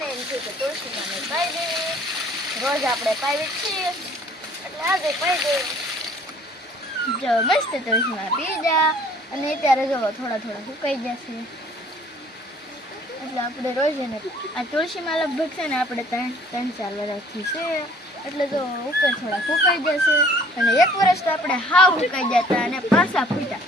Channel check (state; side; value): normal; both; correlation 0.56